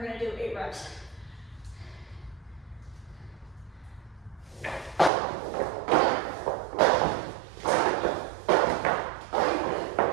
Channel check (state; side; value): drops out; left; at 5.1 s